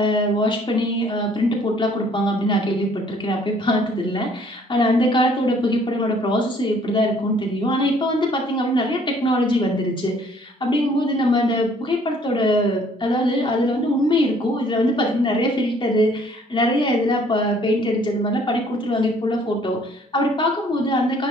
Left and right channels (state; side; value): normal; both; correlation 0.59